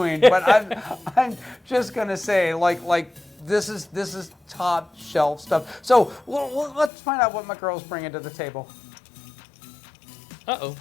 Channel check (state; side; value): drops out; right; at 6.9 s